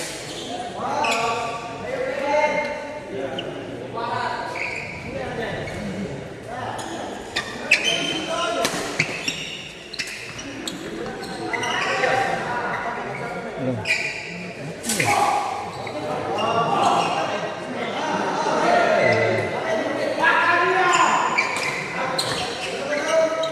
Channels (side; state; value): both; identical; correlation 1.00